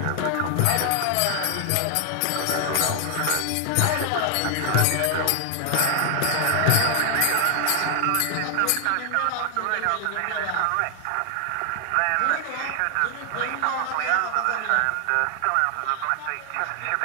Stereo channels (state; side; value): different; both; correlation 0.00